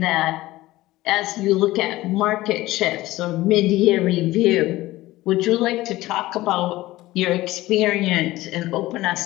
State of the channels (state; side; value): quieter; right; 17.5 dB